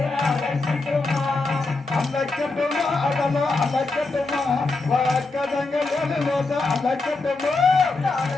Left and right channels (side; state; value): right; quieter; 3.5 dB